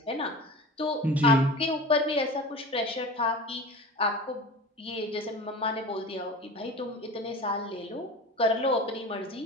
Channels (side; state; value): both; normal; correlation 0.34